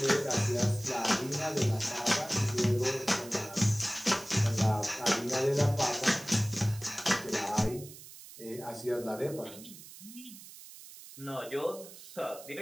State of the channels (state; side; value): noise; right; hiss, 16 dB below the sound